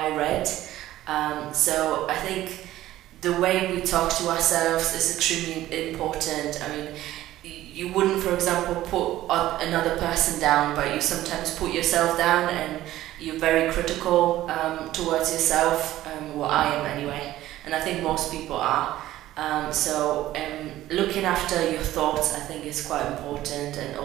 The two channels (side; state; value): left; quieter; 14.7 dB